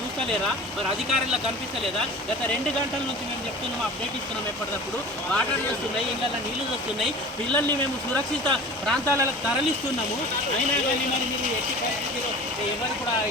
మరి అధికారులకు కనిపిస్తలేదా? గత 2 గంటల నుంచి మేము చెప్తున్నాము, అప్డేట్ ఇస్తున్నాం. ఎప్పటికప్పుడు వాటర్ వస్తున్నాయి, ఇళ్ళల్లో నీళ్లు వస్తున్నాయి, పిల్లల్ని మేము సురక్షిత ప్రాంతాలకు తరలిస్తున్నాము. అయినా కానీ మరి మీరు ఎట్టి పరిస్థితిలో ఎవరు కూడా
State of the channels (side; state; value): both; normal; correlation 0.39